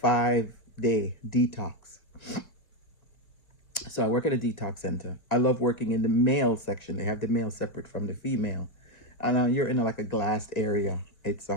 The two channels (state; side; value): late; right; 2.1 ms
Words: 5-day detox. So I work at a detox center. I love working in the male section. They have the male separate from the female. And you're in like a glassed area. It's, I